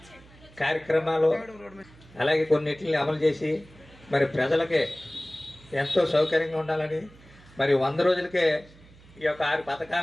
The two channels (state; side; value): noise; right; hum, 24 dB below the sound